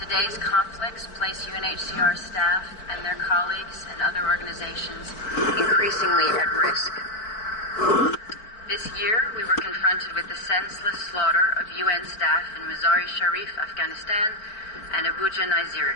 conflicts place UNHCR staff and their colleagues and other organizations increasingly at risk. This year, we were confronted with the senseless slaughter of UN staff in Mazar-e-Sharif, Afghanistan, and Abuja,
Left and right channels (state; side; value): late; right; 4.6 ms